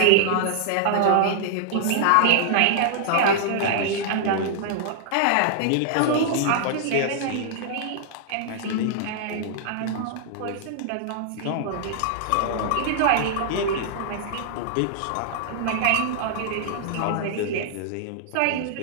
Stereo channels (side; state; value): both; different; correlation -0.01